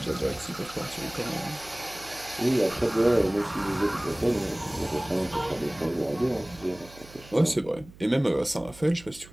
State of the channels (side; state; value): right; noise; hum, 21 dB below the sound